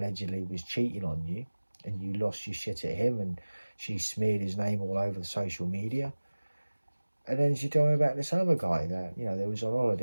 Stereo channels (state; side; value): inverted; both; correlation -1.00